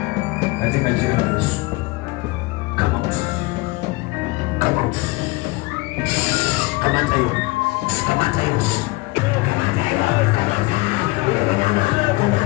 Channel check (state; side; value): quieter; right; 23.4 dB